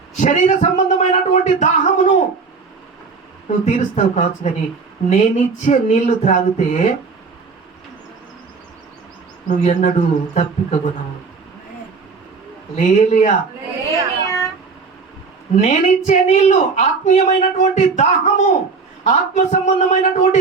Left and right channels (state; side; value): quieter; left; 4.8 dB